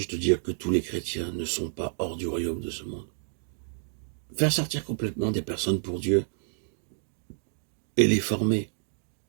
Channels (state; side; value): silent; left; digital silence